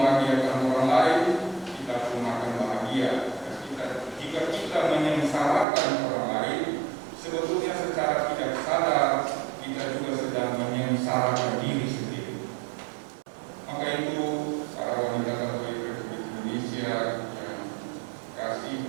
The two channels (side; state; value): left; drops out; at 5.7 s